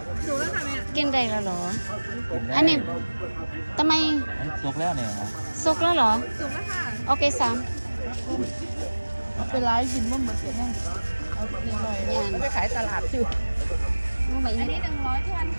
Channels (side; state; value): both; inverted; correlation -1.00